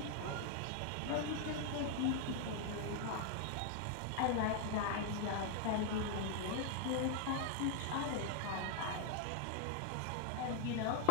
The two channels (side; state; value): both; different; correlation 0.00